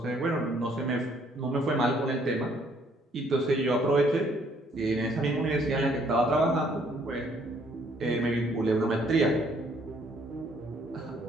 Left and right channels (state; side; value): normal; both; correlation 0.65